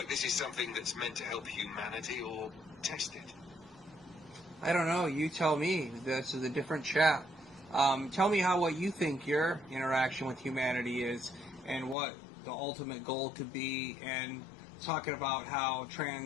this is something that's meant to help humanity or test it? I don't know, you tell me. This is a different chat. Tell me what you think your interaction with humanity is and what the ultimate goal could be, and talking about how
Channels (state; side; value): drops out; right; at 12.0 s